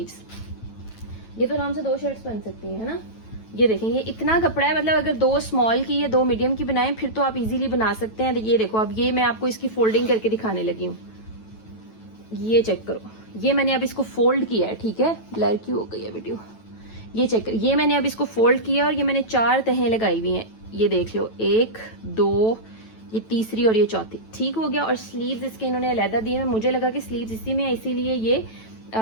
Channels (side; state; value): right; late; 9.1 ms